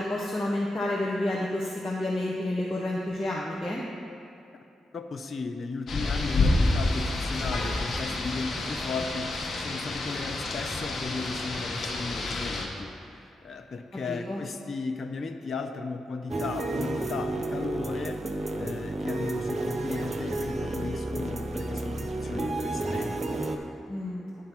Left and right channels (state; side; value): normal; both; correlation 0.86